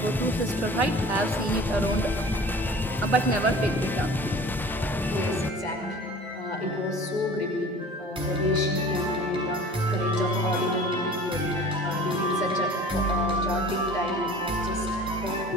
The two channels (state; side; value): normal; both; correlation 0.43